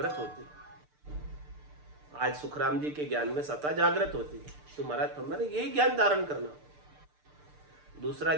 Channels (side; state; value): left; late; 6.7 ms